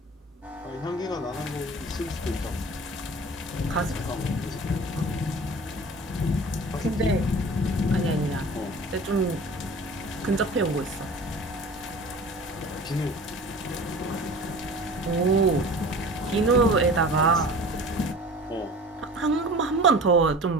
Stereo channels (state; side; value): normal; both; correlation 0.40